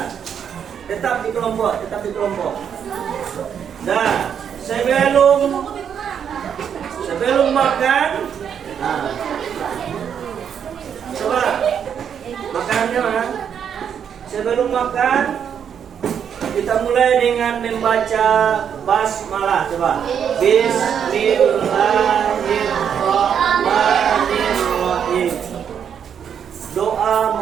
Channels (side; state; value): left; quieter; 8.1 dB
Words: Tetap di kelompok. Nah, sebelum makan, nah, coba makanannya mana? sebelum makan kita mulai dengan membaca basmalah. Coba. Bismillahirrahmanirrahim. Doa